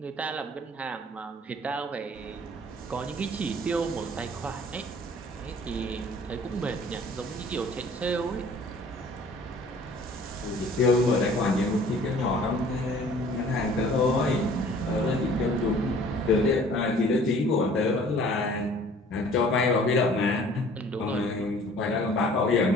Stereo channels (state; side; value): normal; both; correlation 0.52